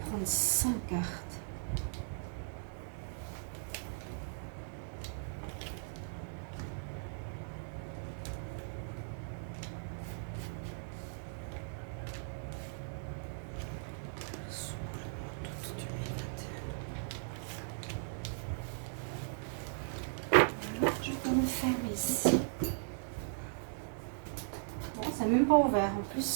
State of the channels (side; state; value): left; silent; digital silence